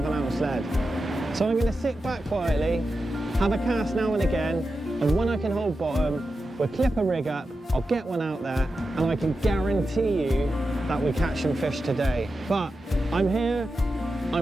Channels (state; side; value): normal; both; correlation 0.91